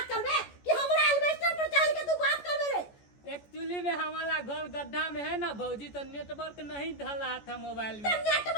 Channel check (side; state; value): right; late; 14 ms